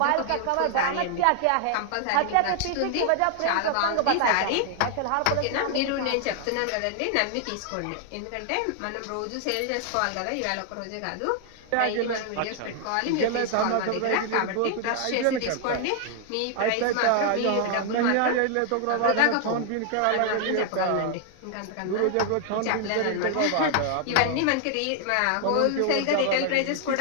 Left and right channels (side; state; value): both; different; correlation 0.00